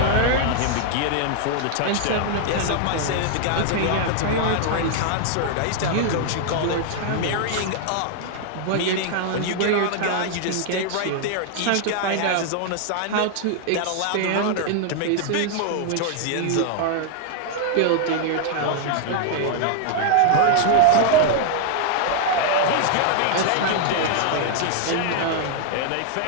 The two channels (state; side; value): different; both; correlation 0.00